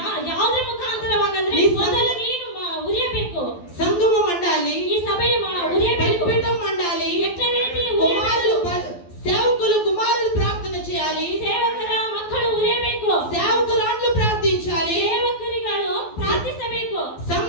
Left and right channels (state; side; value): late; right; 12 ms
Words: ಯಾವುದರ ಮುಖಾಂತರವಾಗಂದ್ರೆ ನೀ ಮೊದಲು ನೀನು ಉರಿಯಬೇಕು. సంఘము మండాలి, ಈ ಸಭೆಯ ಉರಿಯಬೇಕು. బలిపీఠం మండాలి, ಎಟ್ಟ ರೀತಿ కుమారులు ಉರಿಯಬೇಕು. సేవకులు కుమారులు ప్రార్థన చేయాలి, ಸೇವಕರ ಮಕ್ಕಳು ಉರಿಯಬೇಕು. సేవకురాండ్లు ప్రార్థించాలి, ಸೇವಕರಿಗಳು ಪ್ರಾರ್ಥಿಸಬೇಕು.